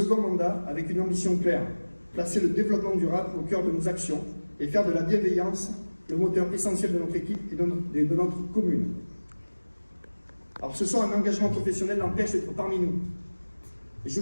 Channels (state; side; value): inverted; both; correlation -1.00